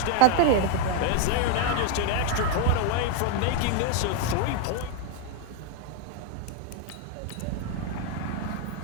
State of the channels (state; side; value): different; both; correlation 0.00